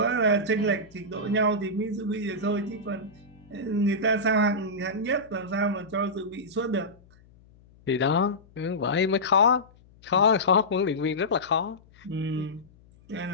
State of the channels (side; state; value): left; noise; hum, 27 dB below the sound